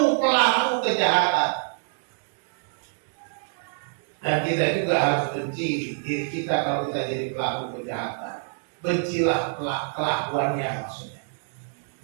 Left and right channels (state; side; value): silent; left; 61 dB below the other